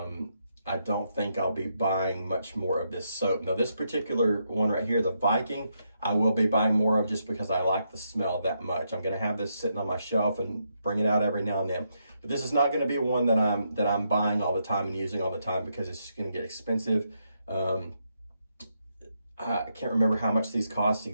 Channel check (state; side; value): inverted; both; correlation -0.80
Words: I don't think I'll be buying much more of this soap. Now, this particular one right here, the Viking, I will be buying more of just because I like the smell that much. I'm gonna have this sitting on my shelf and bring it out every now and then. But this is not gonna be one that I'm buying all the time and using all the time because it's just gonna get expensive. I can't remember how much these cost